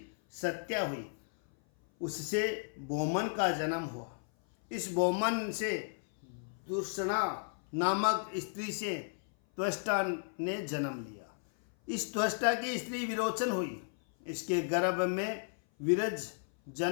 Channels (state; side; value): silent; right; 55 dB below the other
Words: सत्या हुई, उससे बोमन का जन्म हुआ। इस बोमन से दुर्षणा नामक स्त्री से त्वष्टा ने जन्म लिया। इस त्वष्टा की स्त्री विरोचन हुई, इसके गर्भ में विरज